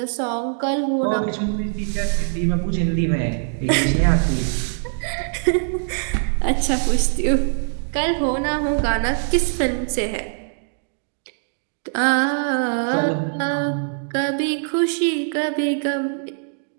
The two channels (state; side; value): silent; left; digital silence